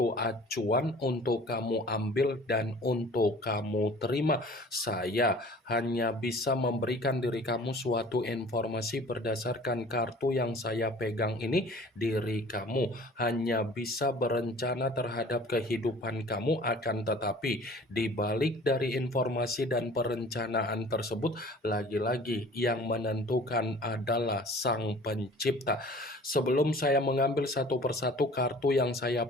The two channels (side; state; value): both; normal; correlation 0.47